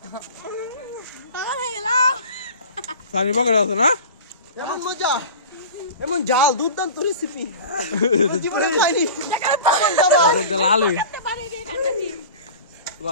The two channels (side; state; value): both; inverted; correlation -0.37